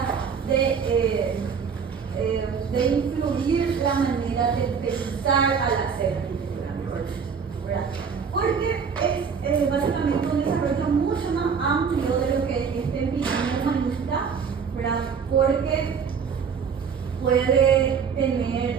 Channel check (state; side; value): quieter; left; 6.3 dB